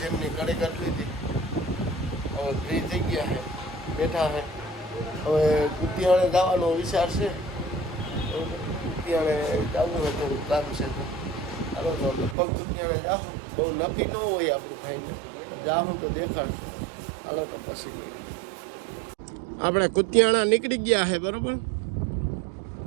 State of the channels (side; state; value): left; drops out; at 12.4 s